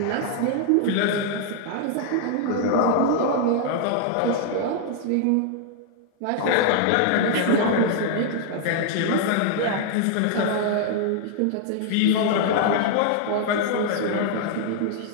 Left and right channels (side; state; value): both; different; correlation 0.00